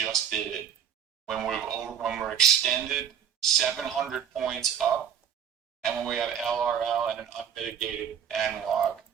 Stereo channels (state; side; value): quieter; left; 8.5 dB